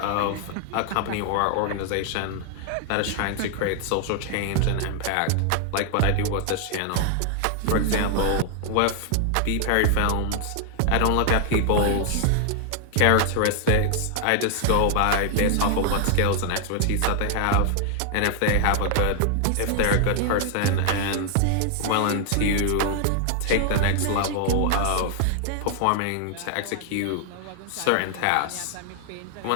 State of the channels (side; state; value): both; different; correlation 0.00